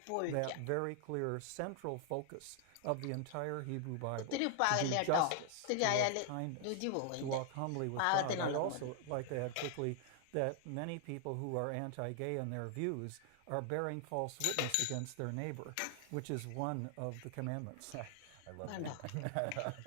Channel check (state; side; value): different; both; correlation 0.00